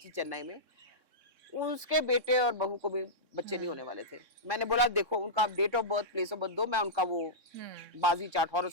चेन्नई में, उसके बेटे और बहू को भी बच्चे नहीं होने वाले थे। मैंने बोला देखो उनका date of birth, place of birth दो, मैं उनका वो बाजी चार्ट,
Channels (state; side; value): late; left; 3.6 ms